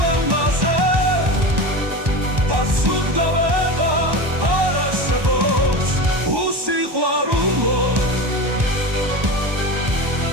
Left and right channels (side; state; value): left; late; 1.1 ms